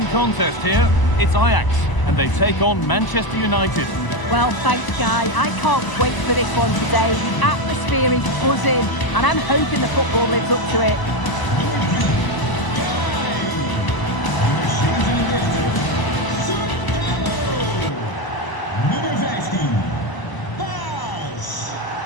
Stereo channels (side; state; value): right; late; 1.0 ms